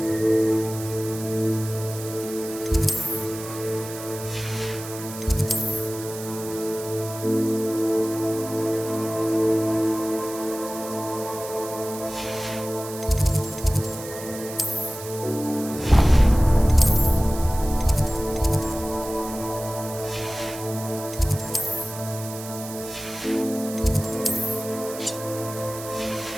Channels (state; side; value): noise; right; hiss, 12 dB below the sound